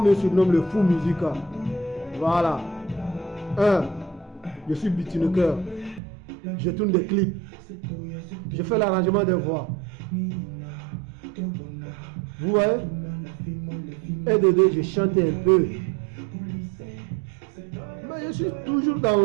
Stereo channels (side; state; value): left; drops out; at 6.0 s